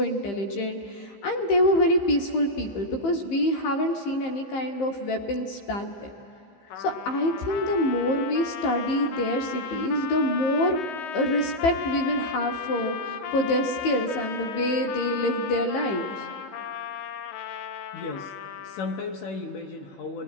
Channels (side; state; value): right; late; 15 ms